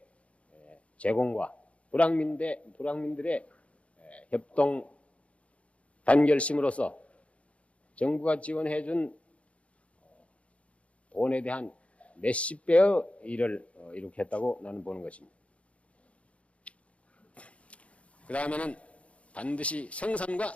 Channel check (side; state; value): right; late; 0.063 ms